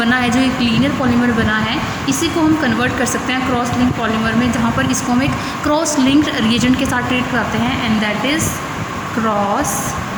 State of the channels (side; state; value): both; identical; correlation 1.00